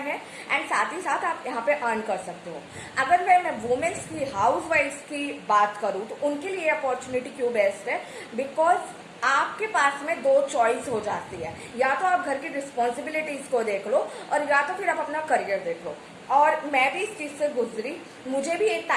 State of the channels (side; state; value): both; identical; correlation 1.00